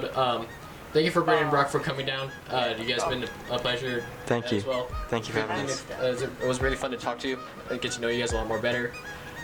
Thank you for Braeden and Brock for coming down. You guys have been a pleasure. Thank you. As well. Thank you for having us. It was really fun to talk to you and get to know you guys a lot more better.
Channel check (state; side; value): identical; both; correlation 1.00